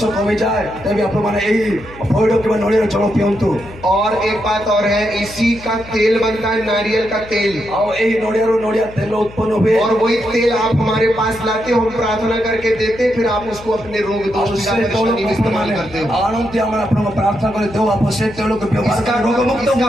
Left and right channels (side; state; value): left; noise; hum, 18 dB below the sound